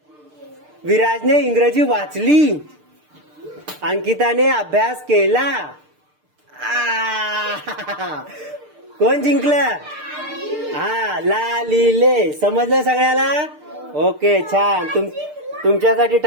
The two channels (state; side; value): late; left; 6.7 ms